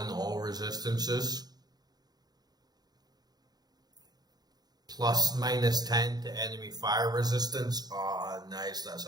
all resistances. Plus -10 to enemy fire resistance. Ah, nice. That's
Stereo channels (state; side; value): late; left; 0.19 ms